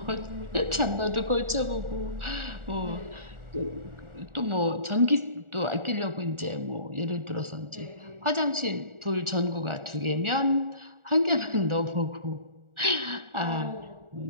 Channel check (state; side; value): late; left; 1.4 ms